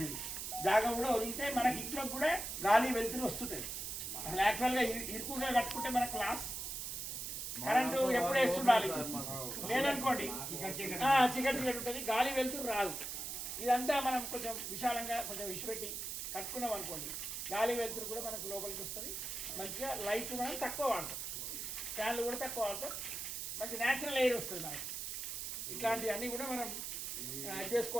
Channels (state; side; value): noise; right; hiss, 5 dB below the sound